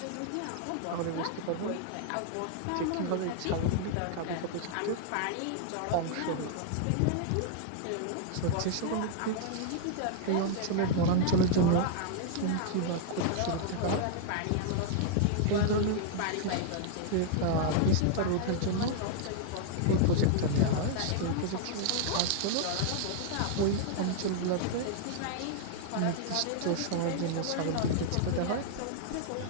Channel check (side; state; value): both; different; correlation -0.01